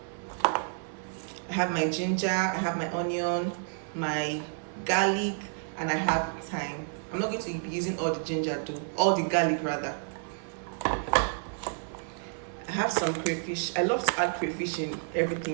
I have my ginger, I have my onion, my garlic, and I have thyme. I'm not going to be using all the ginger though, all the garlic rather. I have some crayfish. I love to add crayfish in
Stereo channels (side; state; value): left; silent; 55 dB below the other